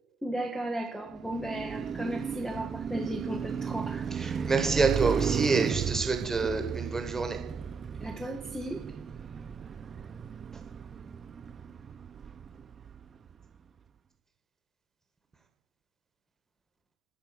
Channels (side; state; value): left; quieter; 4.4 dB